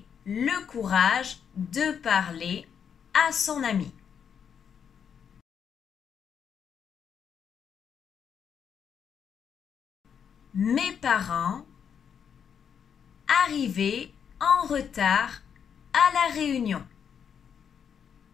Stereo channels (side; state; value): right; quieter; 7.5 dB